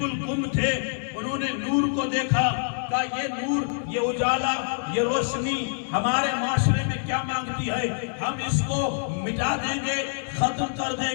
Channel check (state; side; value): silent; right; 58 dB below the other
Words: گم تھے، انہوں نے نور کو دیکھا، کہا یہ نور، یہ اجالا، یہ روشنی ہمارے معاشرے میں کیا مانگتی ہے، ہم اس کو مٹا دیں گے، ختم کر دیں